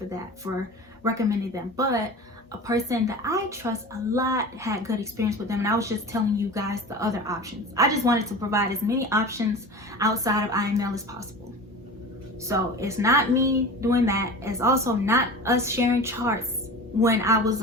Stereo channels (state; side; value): normal; both; correlation 0.34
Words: that, for recommending them. But a person that I trust a lot had good experience with them, and I was just telling you guys the other options. I just wanted to provide as many options outside of IML as possible. So it's not me doing that. It's also not us sharing charts. When I was